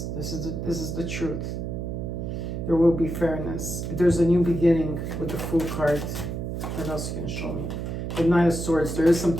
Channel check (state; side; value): noise; right; hum, 4 dB below the sound